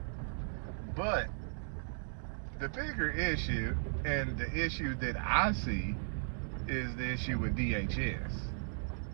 But the bigger issue, and the issue that I see, is the issue with DHS.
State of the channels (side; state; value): left; silent; digital silence